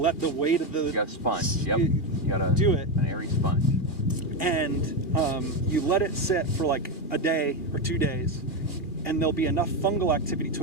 the weight of the. You got a sponge. Yep. You got do it. An airy sponge. And you let it sit for like a day or 2 days, and there'll be enough fungal activity to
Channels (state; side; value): late; right; 2.2 ms